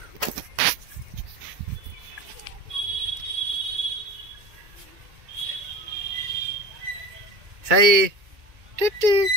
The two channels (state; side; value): late; left; 2.2 ms